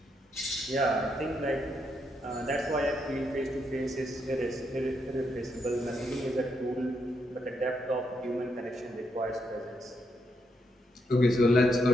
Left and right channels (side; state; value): both; normal; correlation 0.79